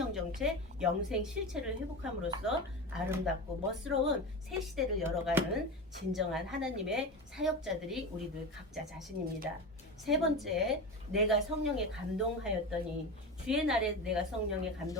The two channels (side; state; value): both; normal; correlation 0.24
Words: 정체, 영생 실체를 회복함으로써 아름답고 멋스러운 새 시대를 열어가는 진정한 하나님의 사역자들이 우리들 각자 자신입니다. 세 번째, 내가 성령에 감동하였더니 주의 날에 내가 성령에